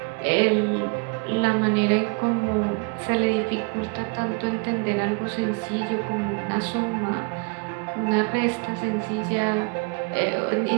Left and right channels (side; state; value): left; quieter; 32.1 dB